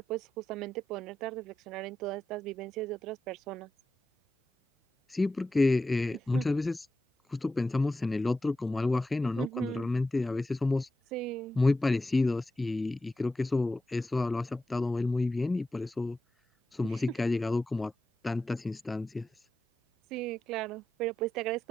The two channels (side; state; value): both; normal; correlation 0.90